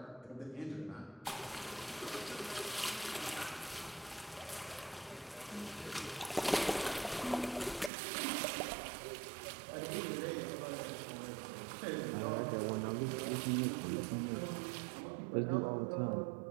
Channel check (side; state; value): left; drops out; at 7.9 s